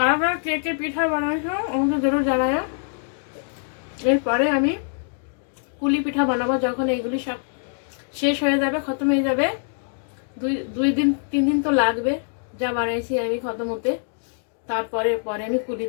কারা কে কে পিঠা বানাইছো আমাকে জরুর জানায়। এরপরে আমি কুলি পিঠা বানাবো, যখন এইগুলি সব শেষ হয়ে যাবে, খতম হয়ে যাবে। 2-3 দিন তো লাগবে যা বানাইছি আমি খতম হতে। পরে আমি কুলি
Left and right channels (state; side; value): silent; right; digital silence